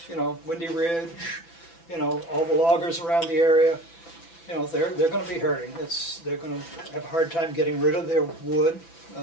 Windy Ridge, all the loggers around the area, they're going to be hurting. They're going to have a hard time getting rid of their wood.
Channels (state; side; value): late; right; 6.0 ms